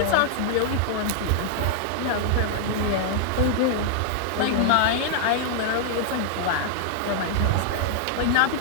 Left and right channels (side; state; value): both; different; correlation -0.01